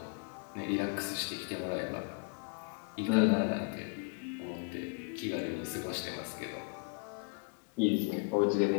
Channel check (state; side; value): quieter; right; 34.8 dB